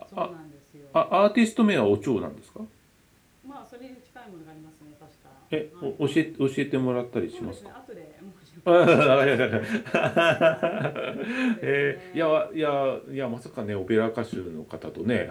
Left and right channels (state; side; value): identical; both; correlation 1.00